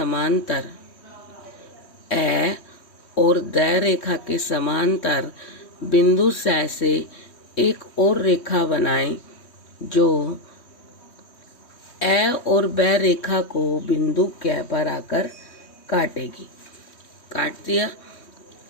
ए और दै रेखा के समांतर बिंदु से एक और रेखा बनाएं जो ए और बै रेखा को बिंदु कै पर आकर काटेगी। काट दिया।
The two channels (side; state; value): right; late; 3.1 ms